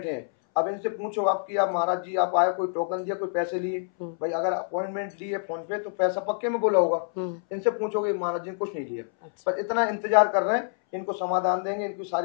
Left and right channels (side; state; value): right; silent; 60 dB below the other